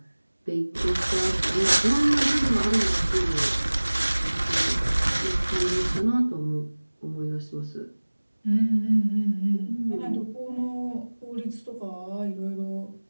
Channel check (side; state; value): both; inverted; correlation -1.00